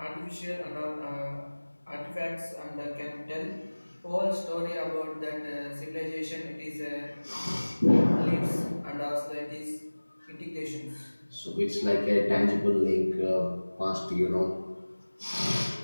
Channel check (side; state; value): both; inverted; correlation -1.00